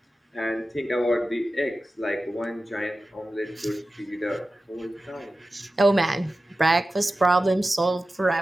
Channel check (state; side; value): normal; both; correlation 0.94